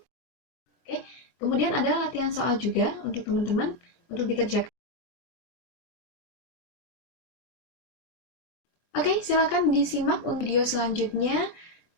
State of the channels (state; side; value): late; right; 24 ms